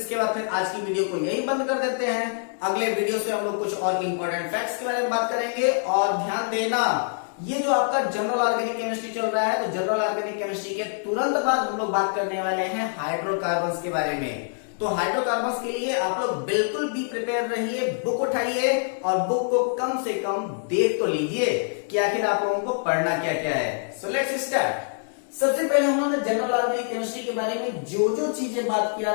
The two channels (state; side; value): silent; right; 62 dB below the other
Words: बाद फिर आज की वीडियो को यही बंद कर देते हैं। अगले वीडियो से हम लोग कुछ और इंपॉर्टेंट फैक्ट्स के बारे में बात करेंगे। और ध्यान देना, ये जो आपका जनरल ऑर्गेनिक केमिस्ट्री चल रहा है, तो जनरल ऑर्गेनिक केमिस्ट्री के तुरंत बाद हम लोग बात करने वाले हैं हाइड्रोकार्बन्स के बारे में। तो हाइड्रोकार्बन्स के लिए आप लोग बिल्कुल भी प्रिपेयर रहिए, बुक उठाइए और बुक को कम से कम देख तो लीजिए कि आखिर आप लोगों को पढ़ना क्या क्या है। So let's start. सबसे पहले हम लोगों ने जनरल ऑर्गेनिक केमिस्ट्री के बारे में जो जो चीजें बात